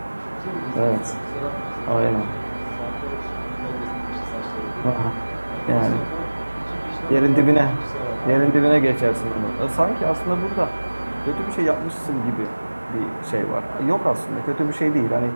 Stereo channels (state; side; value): inverted; both; correlation -1.00